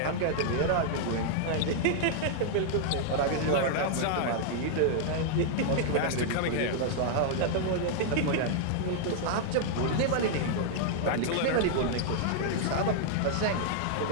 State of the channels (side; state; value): both; different; correlation -0.01